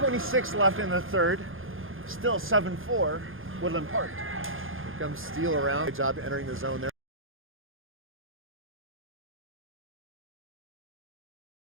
left in the third. Still 7-4, Woodland Park. Here comes Steele around. Good job entering the zone there.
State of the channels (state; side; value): late; left; 0.59 ms